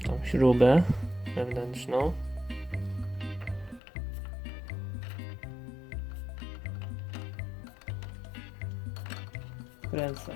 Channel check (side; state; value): right; drops out; at 3.8 s